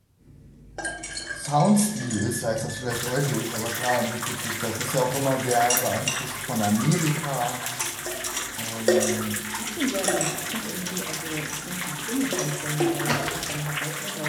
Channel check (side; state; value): both; identical; correlation 1.00